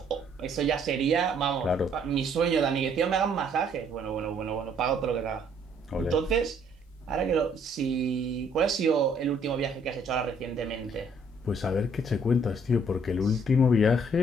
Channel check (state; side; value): normal; both; correlation 0.64